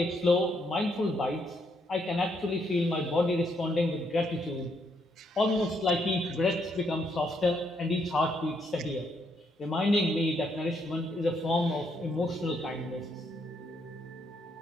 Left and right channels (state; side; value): normal; both; correlation 0.75